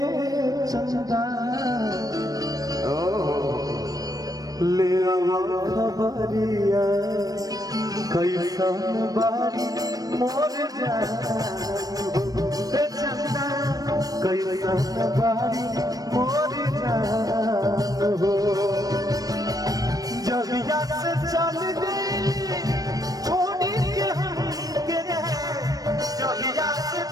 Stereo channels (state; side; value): late; left; 0.18 ms